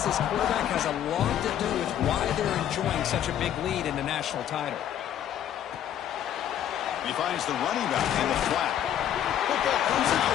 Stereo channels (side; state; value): right; quieter; 10.6 dB